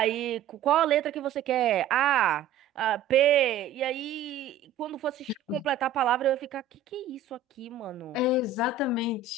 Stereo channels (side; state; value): left; quieter; 6.8 dB